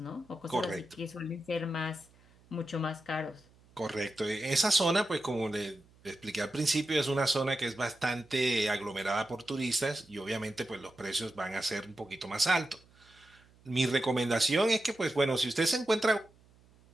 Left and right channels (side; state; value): right; noise; hum, 29 dB below the sound